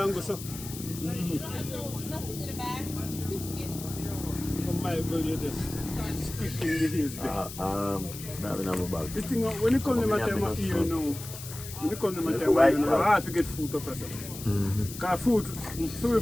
go so. Nothing in the bag. Biscuits. On my gully, you just squeaking the hills there. That in my bag. This thing, when you come to my time of year now, when you come to my time of year now, it's hard to get food up or something. Because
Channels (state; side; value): noise; left; hiss, 12 dB below the sound